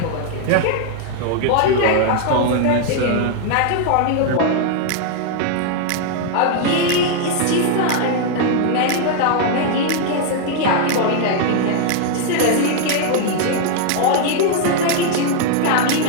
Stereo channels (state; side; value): different; both; correlation 0.00